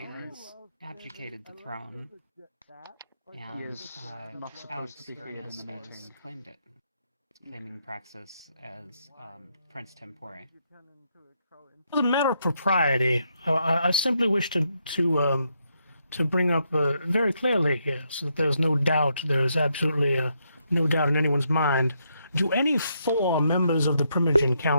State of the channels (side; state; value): both; inverted; correlation -0.78